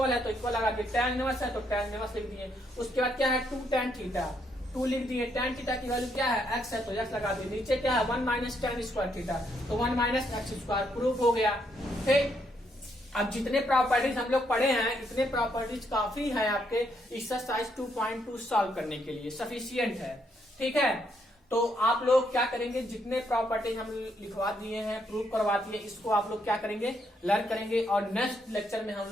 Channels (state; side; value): normal; both; correlation 0.75